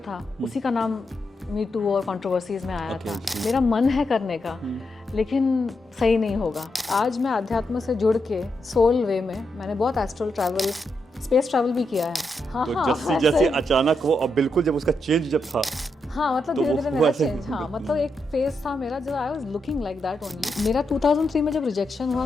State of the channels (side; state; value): both; normal; correlation 0.83